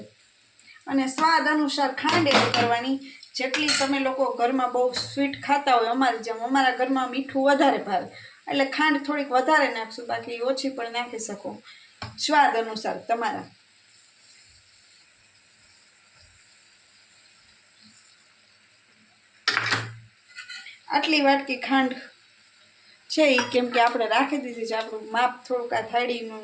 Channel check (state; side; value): identical; both; correlation 1.00